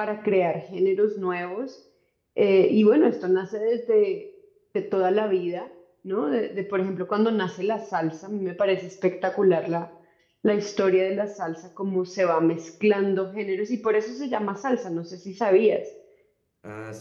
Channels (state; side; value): identical; both; correlation 1.00